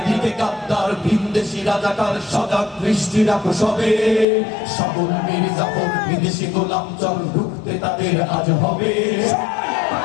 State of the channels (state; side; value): drops out; right; at 4.2 s